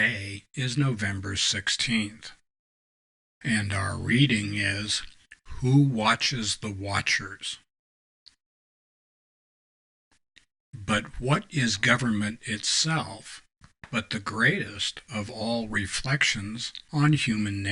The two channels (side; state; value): both; identical; correlation 1.00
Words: is November 16th, and our reading is Who Watches the Watchers? But what is government itself but the greatest of all reflections on human